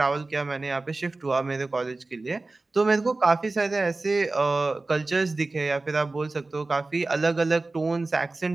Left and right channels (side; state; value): left; quieter; 3.3 dB